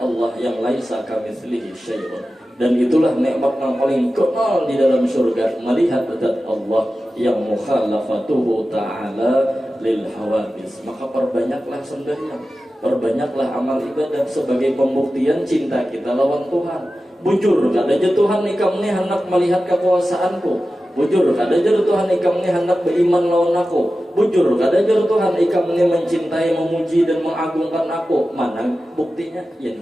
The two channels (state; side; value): normal; both; correlation 0.94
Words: yang laisa kamitslihi syai'un. Dan itulah nikmat yang paling kenal di dalam surga, melihat zat Allah yang mukhalafatuhu ta'ala lil hawadis. Maka perbanyaklah sembahyang, perbanyaklah amal ibadah sebagai pembuktian cinta kita lawan Tuhan. Bujur kada aja Tuhan ikam ni hendak melihat kekuasaanku. Bujur kada aja Tuhan ikam ni hendak beriman lawan aku. Bujur kada aja Tuhan ikam ni mencintai, memuji dan mengagungkan aku. Mana buktinya? Ya